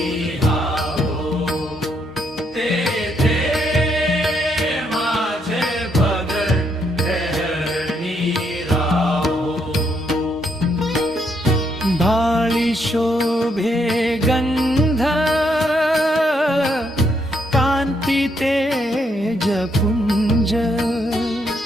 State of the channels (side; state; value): both; normal; correlation 0.75